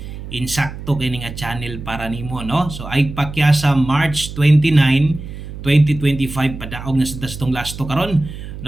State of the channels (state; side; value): noise; right; hum, 11 dB below the sound